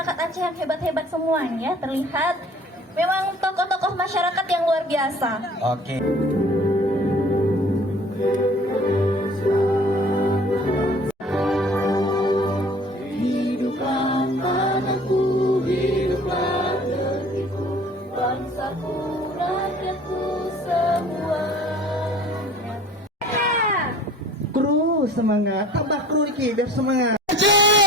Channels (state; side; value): normal; both; correlation 0.49